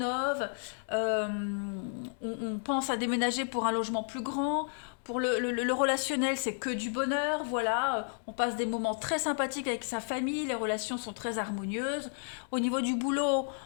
on pense à déménager pour un logement plus grand. Pour le relationnel, c'est que du bonheur, voilà. On passe des moments très sympathiques avec sa famille, les relations sont très harmonieuses. Au niveau du boulot,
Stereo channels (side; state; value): right; silent; 56 dB below the other